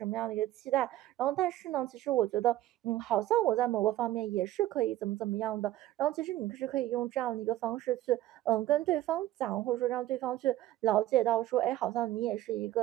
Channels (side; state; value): left; quieter; 14.6 dB